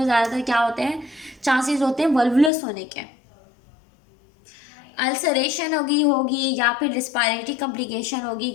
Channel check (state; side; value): drops out; right; at 2.5 s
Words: ज़्यादातर क्या होते हैं, चांसेस होते हैं वल्वुलस होने के, अल्सरेशन होगी होगी या फिर रिस्पायरेटरी कॉम्प्लिकेशन होगी,